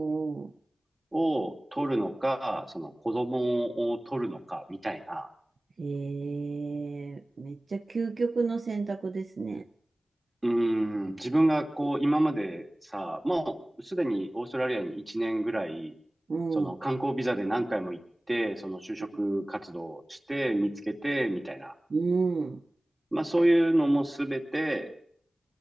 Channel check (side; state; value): both; normal; correlation 0.98